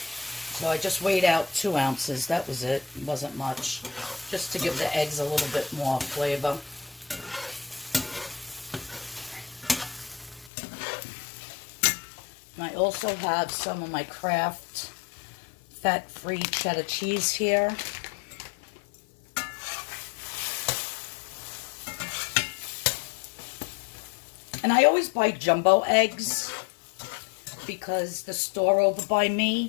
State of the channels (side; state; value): right; drops out; at 10.5 s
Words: So I just weighed out 2 ounces. That was it. It wasn't much. Just to give the eggs a little bit more flavor. And I also have some of my Kraft fat-free cheddar cheese here. And I always buy jumbo eggs because the store over by